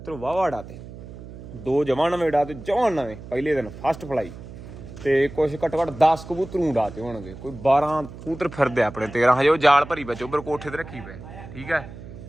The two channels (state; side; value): noise; right; hum, 14 dB below the sound